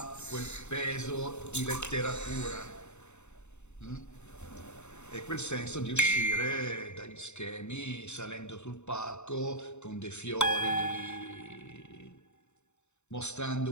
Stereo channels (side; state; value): right; late; 0.82 ms